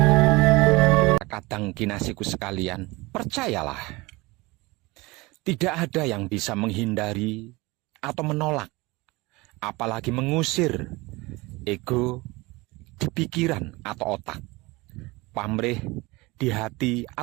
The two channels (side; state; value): left; quieter; 22.8 dB